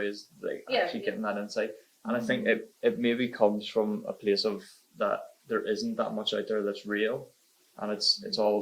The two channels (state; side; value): identical; both; correlation 1.00